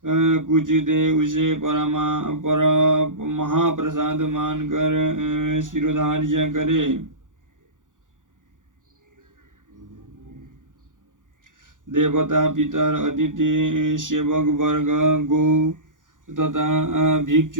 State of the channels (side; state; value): left; late; 0.88 ms